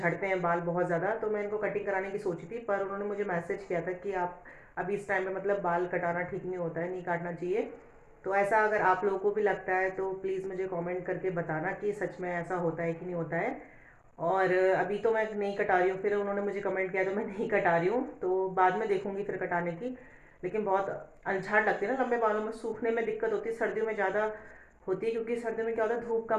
हैं बाल बहुत ज़्यादा। तो मैं इनको कटिंग कराने की सोची थी, पर उन्होंने मुझे मैसेज किया था कि आप अभी इस टाइम पे मतलब बाल कटाना ठीक नहीं होता है, नहीं काटना चाहिए। तो ऐसा अगर आप लोगों को भी लगता है तो प्लीज़ मुझे कमेंट करके बताना कि सच में ऐसा होता है कि नहीं होता है। और अभी तो मैं नहीं कटा रही हूँ, फिर उन्होंने मुझे कमेंट किया तो मैं नहीं कटा रही हूँ, तो बाद में देखूंगी फिर कटाने की। लेकिन बहुत अलझाट लगती है ना लंबे बालों में, सूखने में दिक्कत होती है, सर्दियों में ज़्यादा होती है, क्योंकि सर्दियों में क्या होता है धूप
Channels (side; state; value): both; identical; correlation 1.00